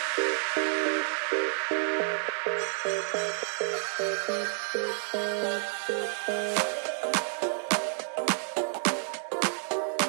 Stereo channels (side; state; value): left; silent; 58 dB below the other